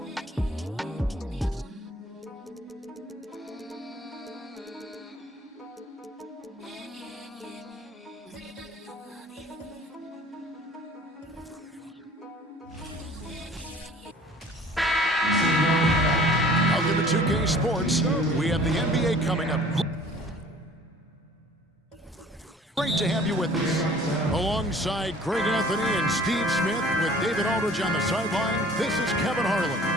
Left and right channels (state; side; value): normal; both; correlation 0.50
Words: Welcome to 2K Sports. We have the NBA coming up. Great to have you with us. Alongside Greg Anthony and Steve Smith with David Aldridge on the sideline, this is Kevin Harlan.